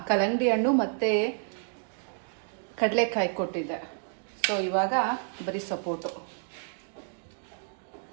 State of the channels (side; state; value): left; silent; digital silence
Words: ಕಲ್ಲಂಗಡಿ ಹಣ್ಣು ಮತ್ತು ಕಡಲೆಕಾಯಿ ಕೊಟ್ಟಿದ್ದೆ. ಸೊ ಇವಾಗ ಬರೀ ಸಪೋಟೊ.